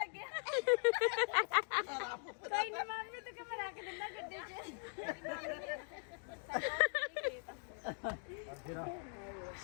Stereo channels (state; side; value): silent; right; 50 dB below the other